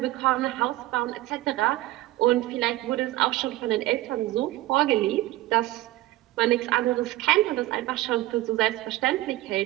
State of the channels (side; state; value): left; quieter; 16.9 dB